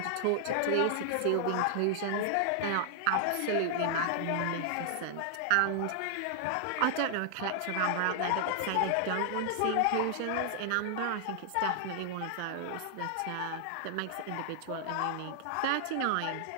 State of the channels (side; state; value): both; different; correlation -0.01